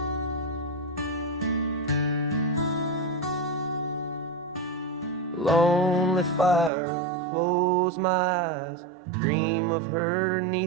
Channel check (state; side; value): drops out; left; at 6.7 s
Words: Lonely fire, close my eyes, dream of her